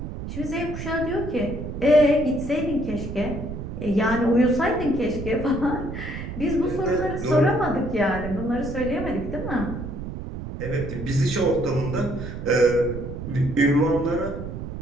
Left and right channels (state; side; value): noise; right; rumble, 8 dB below the sound